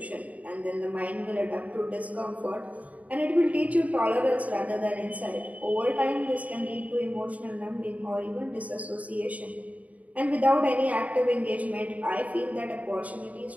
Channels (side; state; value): left; late; 0.070 ms